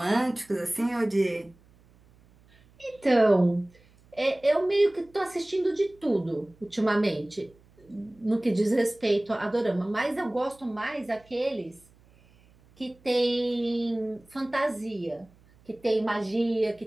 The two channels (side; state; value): right; noise; hum, 29 dB below the sound